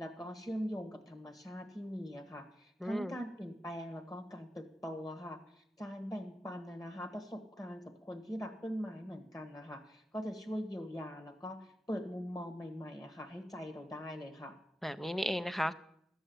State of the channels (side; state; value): both; normal; correlation 0.90